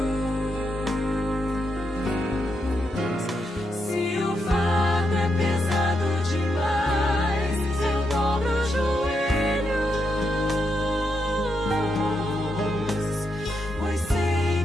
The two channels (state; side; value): normal; both; correlation 0.82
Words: Se o fardo é pesado demais, eu dobro os joelhos. Pois sei